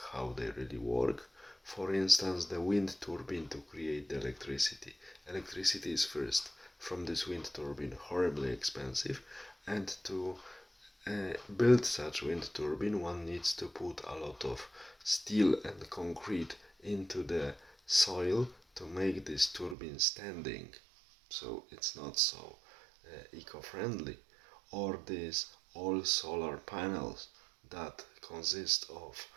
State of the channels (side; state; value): left; drops out; at 19.8 s